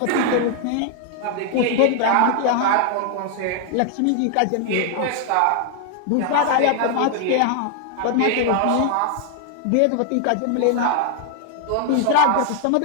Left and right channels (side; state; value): both; different; correlation 0.00